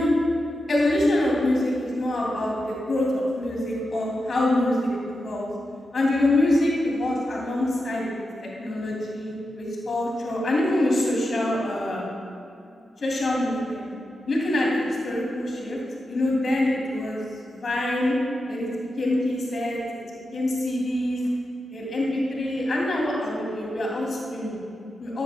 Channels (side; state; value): both; normal; correlation 0.89